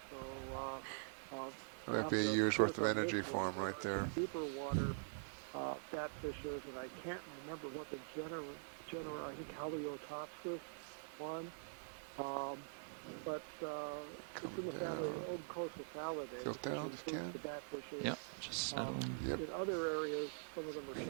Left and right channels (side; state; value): left; silent; digital silence